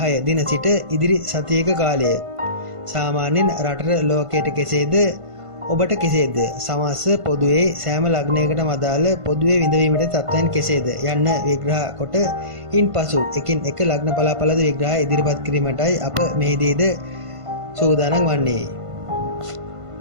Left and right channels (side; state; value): left; late; 1.5 ms